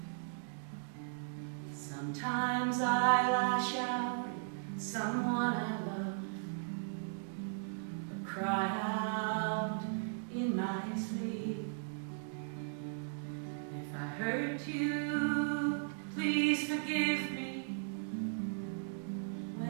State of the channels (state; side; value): silent; left; digital silence